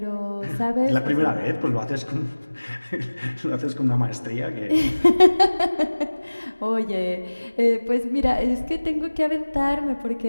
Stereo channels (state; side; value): inverted; both; correlation -1.00